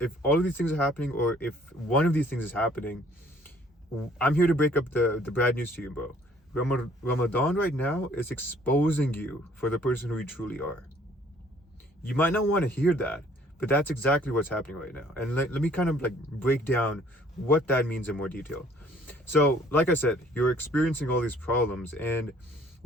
things are happening, or if one of these things is happening, I'm here to break up the bad news to you, bro. Ramadan right now is exposing you for the person who you truly are. You might not want to hear that, but that's exactly what's happening right now. And let me kind of like break down what that means in more detail. So, like I said, you're experiencing all these problems, and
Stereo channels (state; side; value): normal; both; correlation 0.59